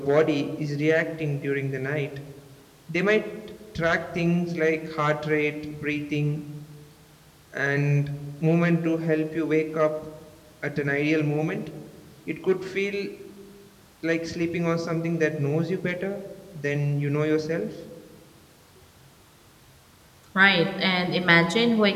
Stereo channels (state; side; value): identical; both; correlation 1.00